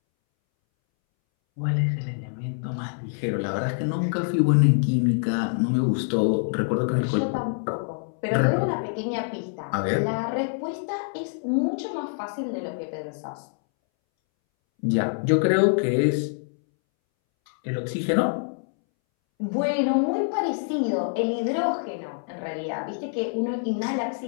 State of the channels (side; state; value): right; silent; 61 dB below the other